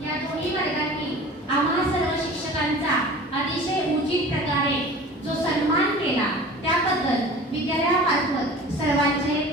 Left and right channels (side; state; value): both; normal; correlation 0.40